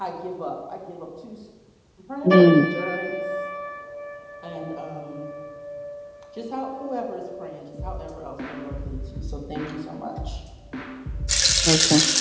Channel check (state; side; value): identical; both; correlation 1.00